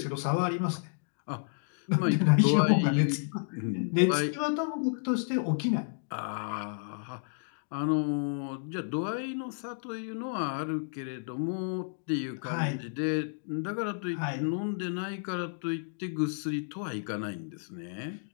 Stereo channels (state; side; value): silent; right; digital silence